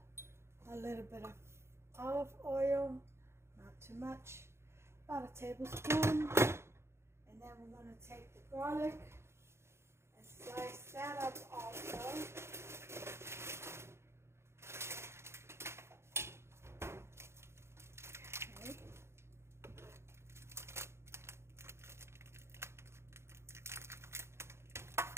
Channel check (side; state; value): left; late; 0.13 ms